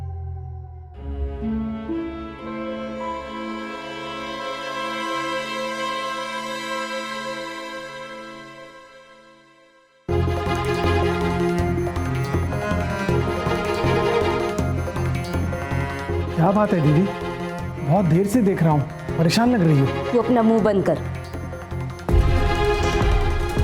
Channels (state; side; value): identical; both; correlation 1.00